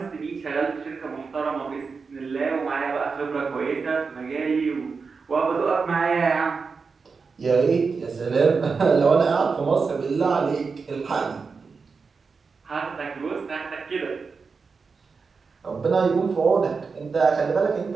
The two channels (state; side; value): quieter; left; 4.9 dB